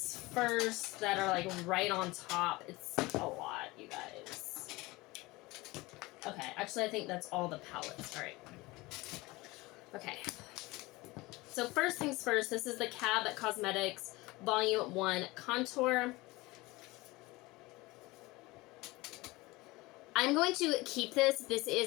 first that are like right on top. It's a lot, you guys. Okay, actually I think that's all the palettes. All right. Okay. So first things first, this is the Cab Cosmetics Volume 1 Contour. I'm going to keep this. This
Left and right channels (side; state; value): right; quieter; 21.6 dB